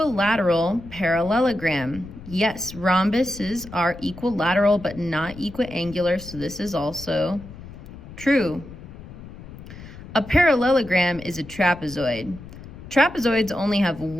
parallelogram. Yes, rhombuses are equilateral but not equiangular, so this is also true. A parallelogram is a trapezoid. Trapezoids only have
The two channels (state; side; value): noise; left; rumble, 15 dB below the sound